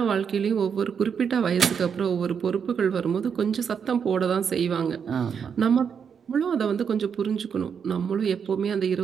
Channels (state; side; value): quieter; left; 7.0 dB